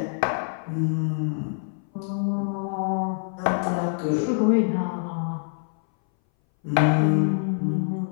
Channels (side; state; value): right; silent; 60 dB below the other